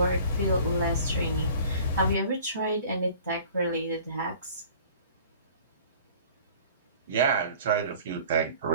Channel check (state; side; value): inverted; both; correlation -0.48